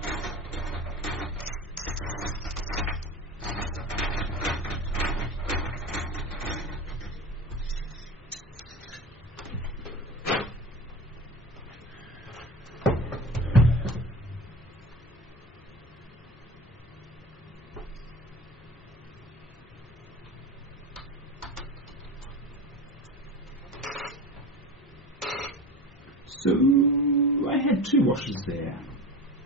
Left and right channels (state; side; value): normal; both; correlation 0.31